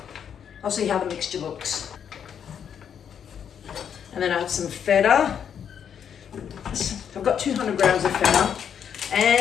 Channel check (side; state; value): right; quieter; 8.2 dB